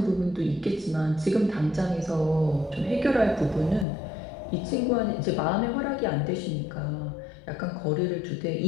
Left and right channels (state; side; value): drops out; right; at 3.9 s